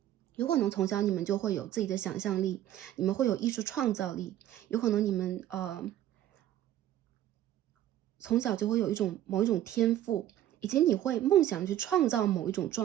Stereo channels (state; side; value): quieter; left; 12.4 dB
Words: 有可能从小你们就会有自己的想象力，你们会有艺术创造力，有可能你们从小就会有某一种天赋，以及你会梦想去创造某一种